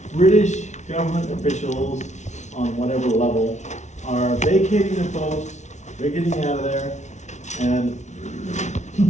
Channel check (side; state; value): right; late; 0.33 ms